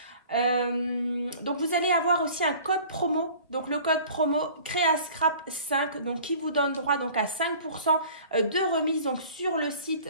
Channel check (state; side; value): inverted; both; correlation -0.46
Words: Donc vous allez avoir aussi un code promo, donc le code promo CréaScrap5, qui vous donne droit à 5% de remise sur le site